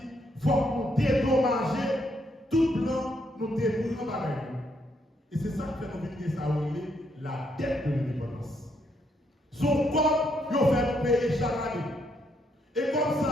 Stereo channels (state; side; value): normal; both; correlation 0.75